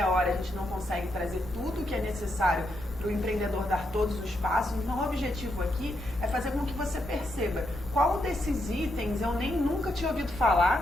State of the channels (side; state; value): both; normal; correlation 0.80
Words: hora a gente não consegue trazer tudo que é necessário para o empreendedor dar todos os passos. Então o objetivo aqui é fazer com que você perceba qual desses itens eu nunca tinha ouvido